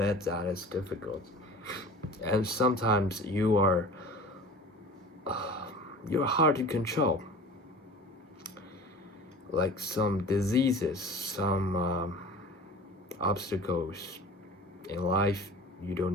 that it's difficult. And sometimes you're hard to control. Like some diseases, some obstacles in life, you don't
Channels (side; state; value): both; normal; correlation 0.39